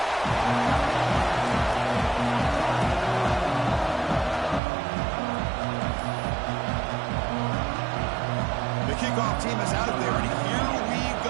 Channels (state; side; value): drops out; left; at 4.6 s